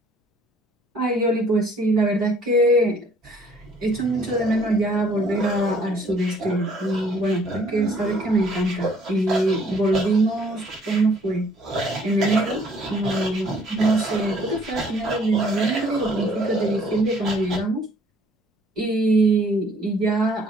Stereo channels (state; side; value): normal; both; correlation 0.60